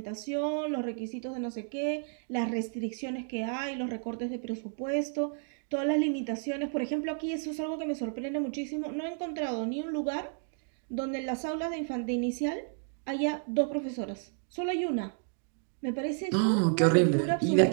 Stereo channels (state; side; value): silent; left; digital silence